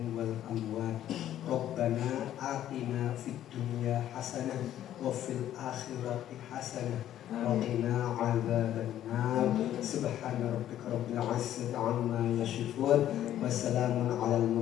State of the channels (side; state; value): right; quieter; 11.9 dB